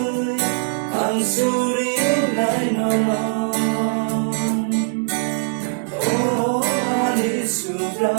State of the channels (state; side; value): silent; left; digital silence